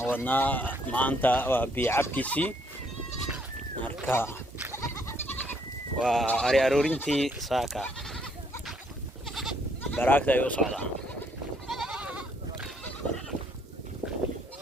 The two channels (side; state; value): both; normal; correlation 0.69